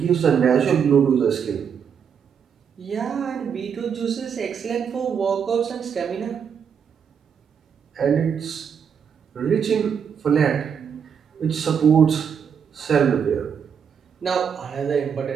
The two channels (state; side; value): quieter; left; 7.3 dB